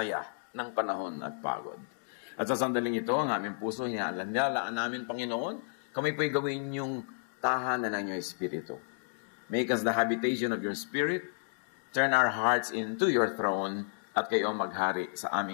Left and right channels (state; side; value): silent; right; digital silence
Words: ng panahon at pagod. At sa sandaling ito, ang aming puso, hinaalaan namin, Panginoon, kami po'y gawin yung tahanan ng iyong Espiritu. Make us the habitation of your Spirit, turn our hearts into your throne, at kayo ang maghari sa